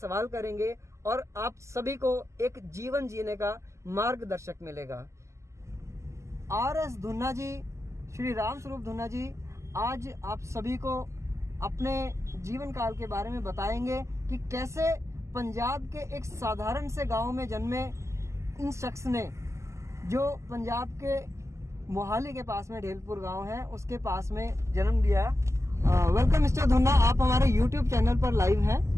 करेंगे और आप सभी को एक जीवन जीने का मार्गदर्शक मिलेगा। RS धुन्ना जी, श्री राम स्वरूप धुन्ना जी आज आप सभी को अपने जीवन काल के बारे में बताएंगे कि कैसे पंजाब के एक साधारण से गांव में जन्मे इन शख्स ने, जो पंजाब के मोहाली के पास में ढेलपुर गांव है, उसके पास में जन्म लिया। वेलकम मिस्टर धुन्ना, आप हमारे YouTube चैनल पर लाइव हैं,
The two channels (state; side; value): late; left; 0.14 ms